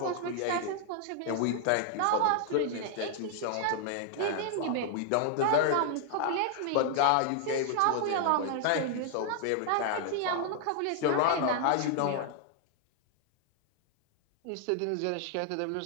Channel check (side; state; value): both; different; correlation 0.00